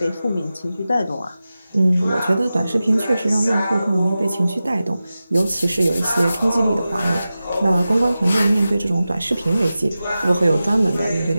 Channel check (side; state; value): both; inverted; correlation -0.94